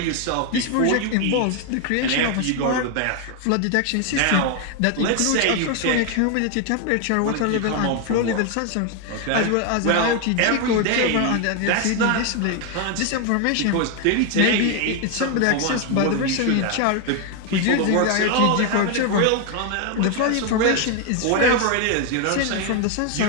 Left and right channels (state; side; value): different; both; correlation 0.01